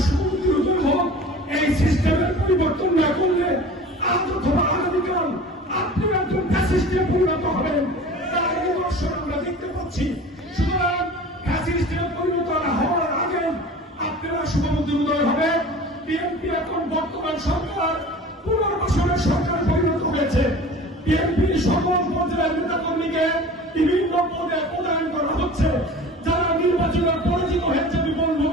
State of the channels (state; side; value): normal; both; correlation 0.40